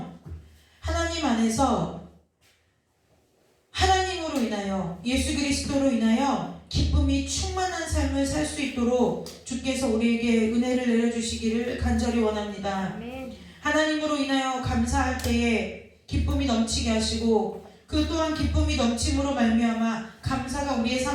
하나님 안에서 하나님으로 인하여 예수 그리스도로 인하여 기쁨이 충만한 삶을 살 수 있도록 주께서 우리에게 은혜를 내려주시기를 간절히 원합니다. 아멘. 하나님으로 인하여 감사할 때에 기쁨이 넘치게 하시고 그 또한 기쁨이 넘침으로 말미암아 감사가 우리의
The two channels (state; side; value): identical; both; correlation 1.00